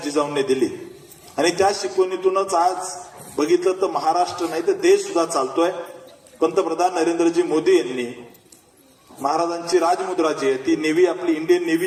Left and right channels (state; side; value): identical; both; correlation 1.00